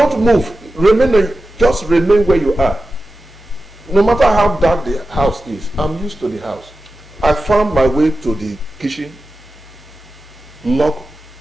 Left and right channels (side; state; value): both; normal; correlation 0.93